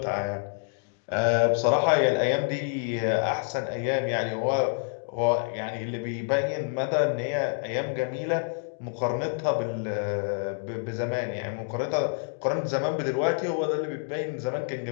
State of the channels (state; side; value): silent; right; digital silence